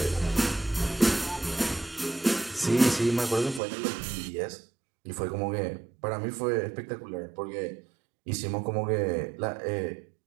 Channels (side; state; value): left; drops out; at 3.6 s